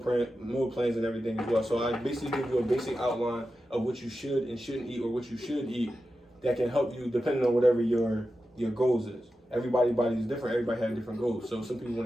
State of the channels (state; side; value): normal; both; correlation 0.91